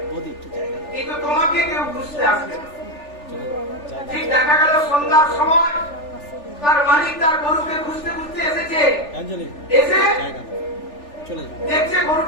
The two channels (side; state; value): right; late; 3.4 ms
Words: কিন্তু তোমাকে কেউ খুঁজতে আসবে না। ঠিক দেখা গেল সন্ধ্যার সময় তার মালিক তার গরুকে খুঁজতে খুঁজতে এসেছে। এসে দেখছে